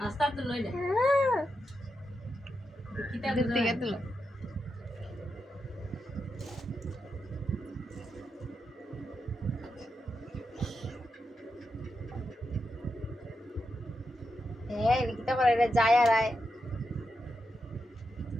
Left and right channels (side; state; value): both; normal; correlation 0.86